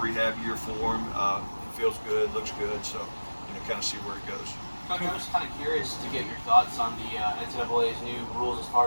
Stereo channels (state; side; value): inverted; both; correlation -1.00